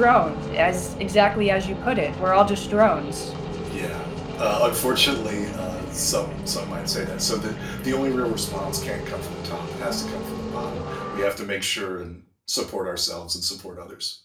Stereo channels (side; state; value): both; identical; correlation 1.00